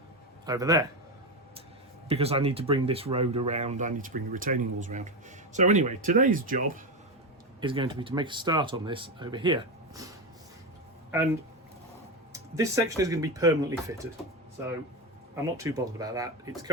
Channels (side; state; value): both; normal; correlation 0.14